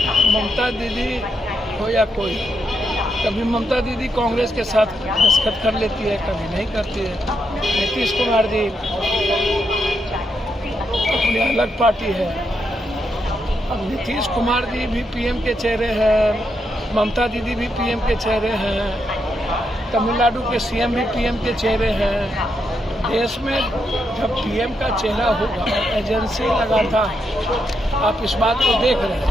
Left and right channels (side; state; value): both; normal; correlation 0.81